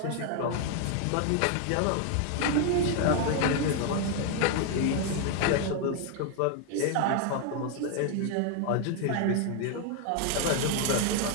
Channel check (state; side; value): different; both; correlation 0.00